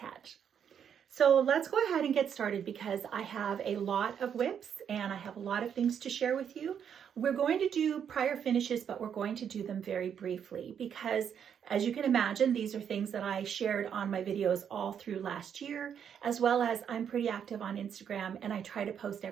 So let's go ahead and get started because I have a lot of whips and I have a lot of things to share with you. We're going to do prior finishes, but we're going to do them very briefly because, as you can imagine, these are things that I shared on my videos all through last year, as well as I'm pretty active on Instagram and I try to post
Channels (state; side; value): quieter; left; 8.2 dB